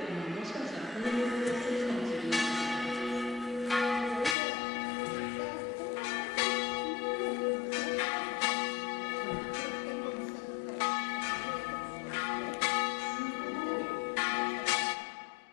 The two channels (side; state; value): right; drops out; at 4.4 s